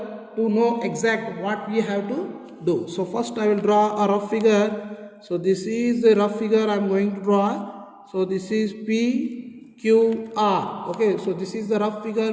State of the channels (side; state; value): both; identical; correlation 1.00